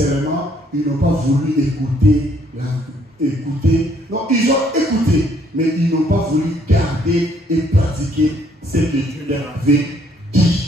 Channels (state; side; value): normal; both; correlation 0.66